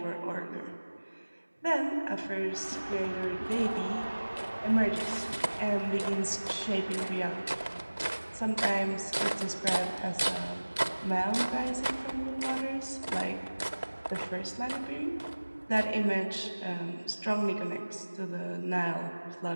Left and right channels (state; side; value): inverted; both; correlation -1.00